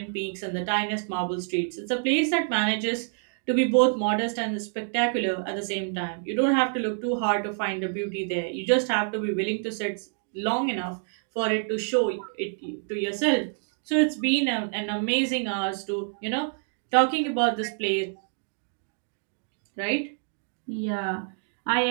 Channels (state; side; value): silent; left; 60 dB below the other